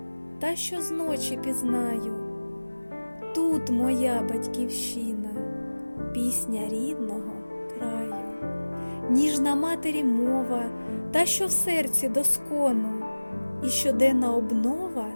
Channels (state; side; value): inverted; both; correlation -1.00